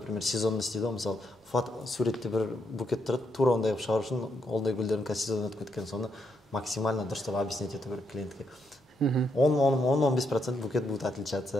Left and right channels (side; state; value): both; normal; correlation 0.78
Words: сезонный істейді ғой, мысалы, суретте бір букет тұрады, тура ондай қылып шығару үшін, олдай гүлдердің қазір сезон өтіп кеткен, соны максимально дұрыстап объяснять ету керек клиентке. 10-15% букет будет